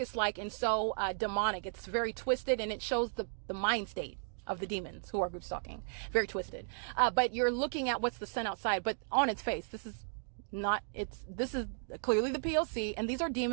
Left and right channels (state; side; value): silent; left; digital silence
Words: and so demonic. It's very twisted, and it shows the mind state of the demons who are group stalking. Very twisted. But you're looking at what's the sun outside, but on its face, this is clearly the P.O.C, and these are